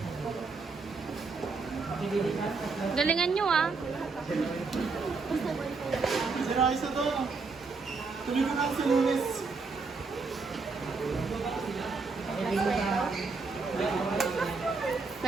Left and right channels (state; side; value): quieter; left; 4.3 dB